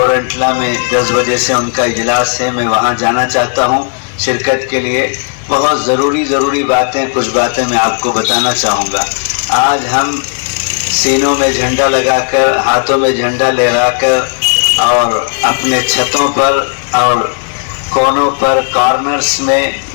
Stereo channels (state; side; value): silent; right; digital silence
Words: میں 10 بجے سے ان کا اجلاس ہے، میں وہاں جانا چاہتا ہوں شرکت کے لیے۔ بہت ضروری باتیں، کچھ باتیں میں آپ کو بتانا چاہوں گا۔ آج ہم سینوں میں جھنڈا لگا کر، ہاتھوں میں جھنڈا لہرا کر اور اپنے چھتوں پر اور کونوں پر کارنرز میں